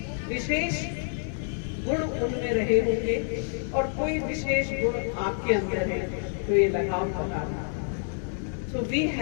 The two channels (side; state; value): right; silent; 59 dB below the other